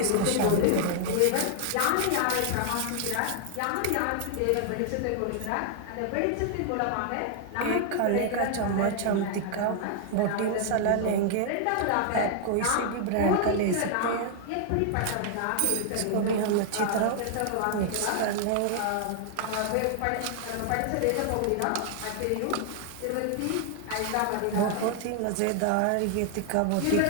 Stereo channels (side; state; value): both; different; correlation 0.00